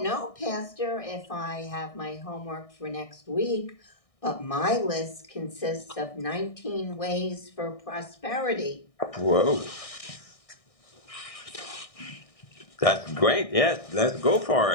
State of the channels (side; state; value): right; late; 1.6 ms